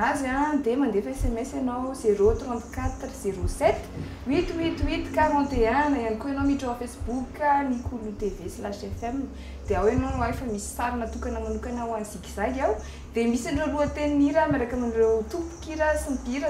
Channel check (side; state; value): both; identical; correlation 1.00